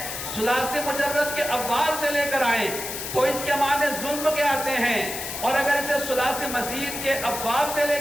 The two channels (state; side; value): noise; left; hiss, 6 dB below the sound